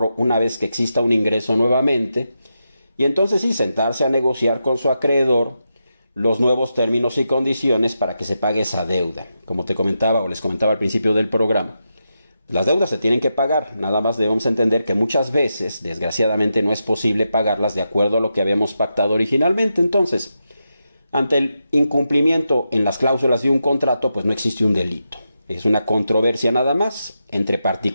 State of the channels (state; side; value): inverted; both; correlation -0.87